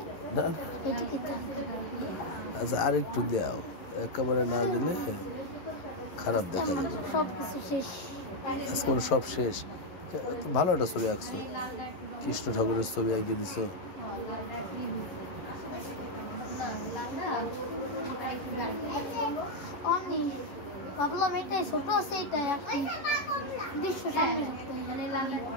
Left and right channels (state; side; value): late; right; 11 ms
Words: আচ্ছা আর একটু দাও, একেবারে না দিলে খারাপ দেখা যাবে। আজকে সব শেষ। ভালো একটা ছবি আঁকছো, কৃষ্ণ ঠাকুরের ছবি আঁকিয়ে দিছো। ভাবলাম এটাই ছোট আছে, এটাই দৃশ্য সামনে